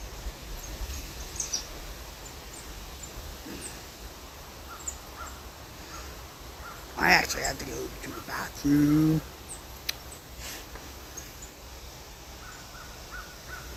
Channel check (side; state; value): both; identical; correlation 1.00